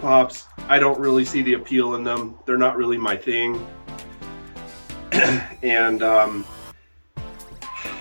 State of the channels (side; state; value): both; inverted; correlation -1.00